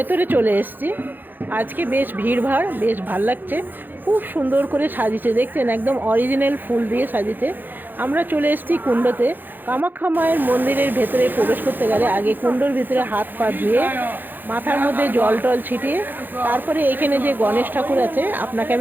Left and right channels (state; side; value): late; left; 0.089 ms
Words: চলে এসেছি। আজকে বেশ ভিড়ভাড়, বেশ ভাল লাগছে। খুব সুন্দর করে সাজিয়েছে, দেখছেন একদম অরিজিনাল ফুল দিয়ে সাজিয়েছে। আমরা চলে এসেছি কুণ্ডতে। কামাখ্যা মায়ের মন্দিরের ভেতরে প্রবেশ করতে গেলে আগে কুণ্ডর ভিতরে হাত পা ধুয়ে মাথার মধ্যে জল টল ছিটিয়ে তারপরে এখানে যে গণেশ ঠাকুর আছে আপনাকে